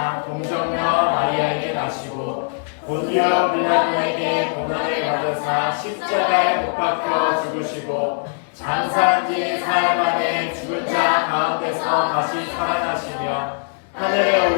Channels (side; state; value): right; silent; 65 dB below the other